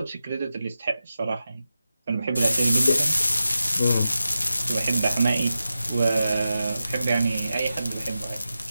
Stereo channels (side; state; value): both; inverted; correlation -0.91